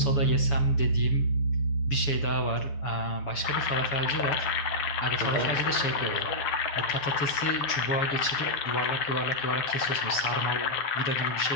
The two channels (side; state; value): right; late; 7.1 ms